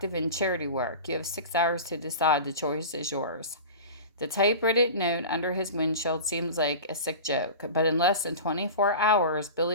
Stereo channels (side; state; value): both; inverted; correlation -0.32